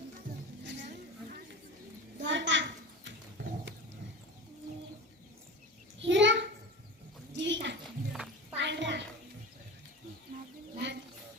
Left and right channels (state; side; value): normal; both; correlation 0.31